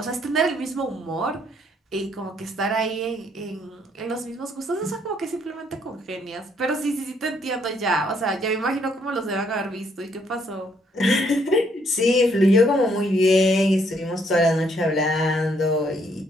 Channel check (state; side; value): normal; both; correlation 0.69